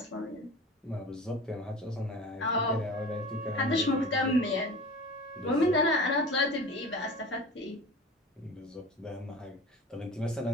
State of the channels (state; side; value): normal; both; correlation 0.37